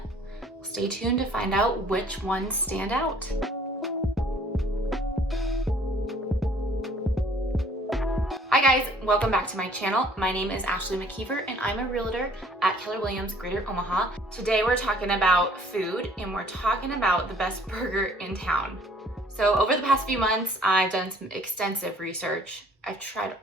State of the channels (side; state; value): both; normal; correlation 0.57